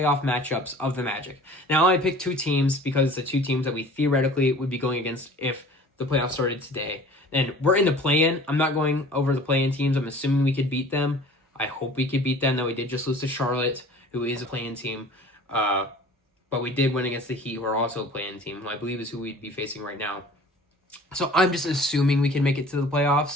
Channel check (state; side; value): normal; both; correlation 0.46